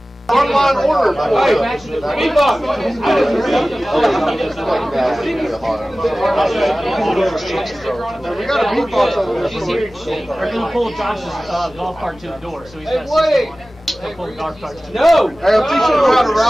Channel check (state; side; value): normal; both; correlation 0.97